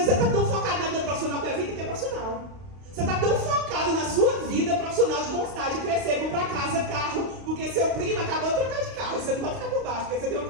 você tá tão focado na vida profissional, porque a vida é profissional. Você tá tão focado na sua vida profissional de conquistar, de crescer, comprar casa, carro, porque seu primo acabou de trocar de carro. Você não pode ficar por baixo, porque você tem uma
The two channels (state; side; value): late; left; 32 ms